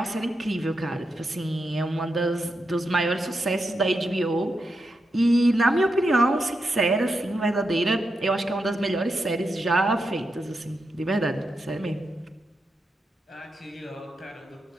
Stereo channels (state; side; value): normal; both; correlation 0.86